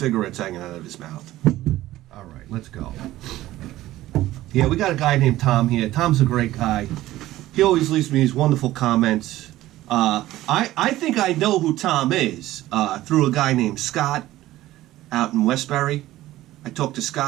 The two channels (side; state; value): left; quieter; 15.6 dB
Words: hanging out of his mouth. All right, let's go. Yeah, we got a guy named Tom here. Tom's a great guy. He always leaves me these wonderful comments. I think I know who Tom is through a guy named Scott out in Westbury. I talked to